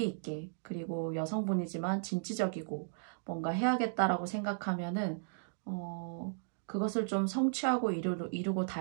있게, 그리고 여성분이지만 진취적이고 뭔가 해야겠다라고 생각하면은 그것을 좀 성취하고 이루고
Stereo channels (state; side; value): silent; left; digital silence